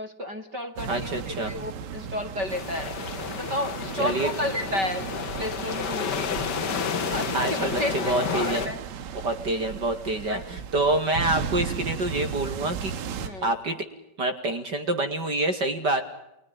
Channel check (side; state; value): left; late; 5.2 ms